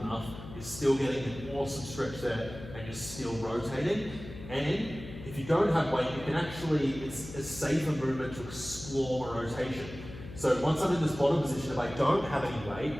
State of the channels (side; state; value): left; noise; hum, 13 dB below the sound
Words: enough. You're still getting an awesome stretch there, and you're still rotating. And if you don't have weight, you can actually, it's a safer movement to explore a rotation. So once I'm in this bottom position, if I don't have any weight,